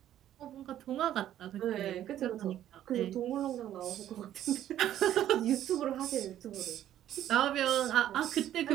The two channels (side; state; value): left; quieter; 11.7 dB